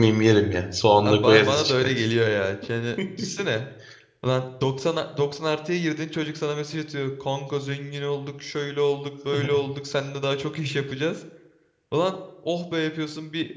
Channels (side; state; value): both; identical; correlation 1.00